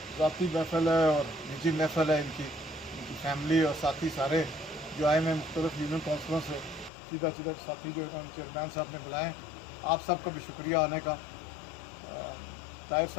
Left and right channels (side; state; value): right; drops out; at 6.9 s